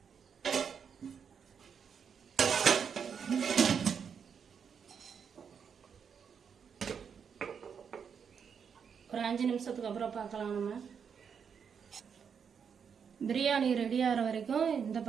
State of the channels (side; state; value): left; quieter; 6.9 dB